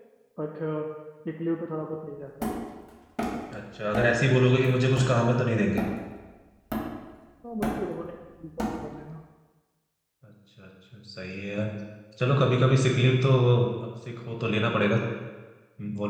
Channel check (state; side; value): identical; both; correlation 1.00